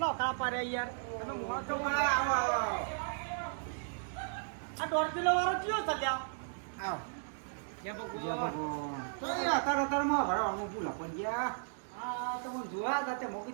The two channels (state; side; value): silent; left; digital silence